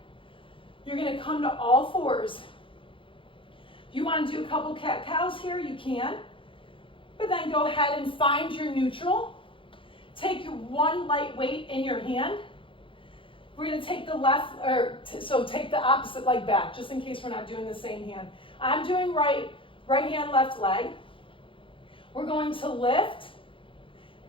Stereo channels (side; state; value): right; late; 0.25 ms